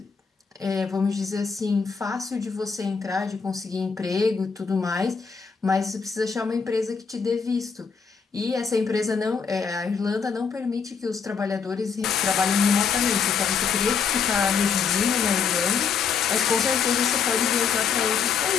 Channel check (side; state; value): right; quieter; 6.2 dB